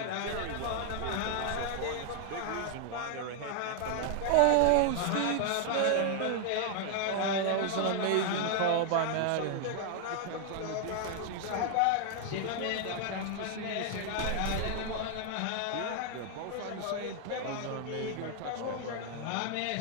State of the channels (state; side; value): different; both; correlation 0.00